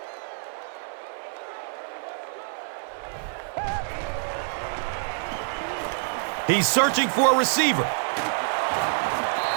He's searching for a receiver.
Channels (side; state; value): left; silent; digital silence